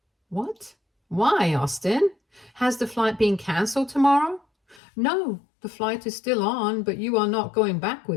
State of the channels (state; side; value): drops out; right; at 4.8 s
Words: "What? Why, Austin? Has the flight been cancelled tomorrow?" "No, the flight is still on, but you are not going back